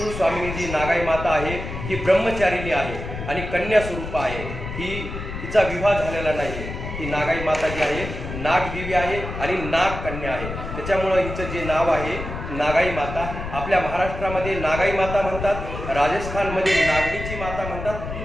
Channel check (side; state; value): left; noise; rumble, 7 dB below the sound